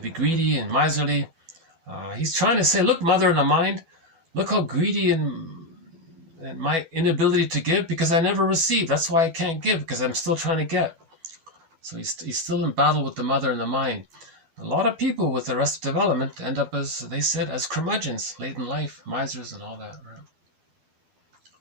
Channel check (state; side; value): late; left; 12 ms